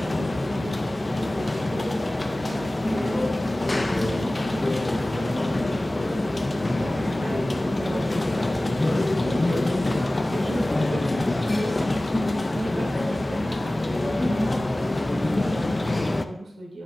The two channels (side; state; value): both; normal; correlation 0.98